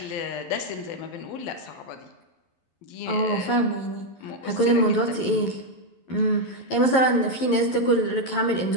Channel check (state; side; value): late; right; 11 ms